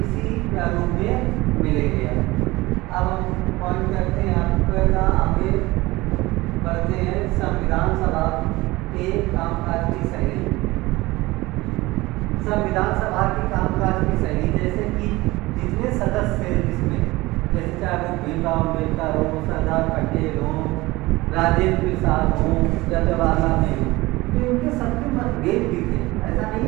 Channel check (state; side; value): quieter; left; 20.4 dB